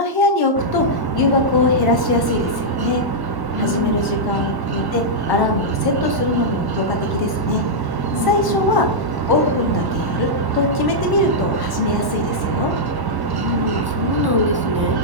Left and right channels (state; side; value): late; left; 1.1 ms